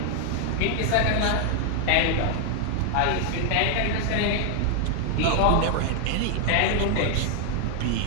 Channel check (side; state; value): both; different; correlation 0.00